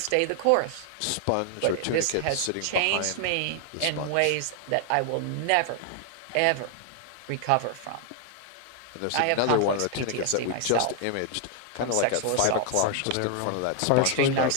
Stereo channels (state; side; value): different; both; correlation 0.00